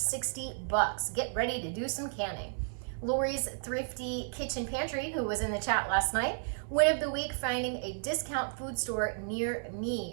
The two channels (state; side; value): silent; left; digital silence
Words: Get ready to do some canning. Lori's Thrifty Kitchen Pantry, who was in the chat last night. Win of the week, finding a discount food store near